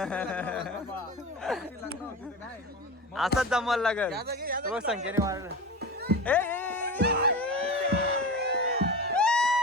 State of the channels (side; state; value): both; normal; correlation 0.28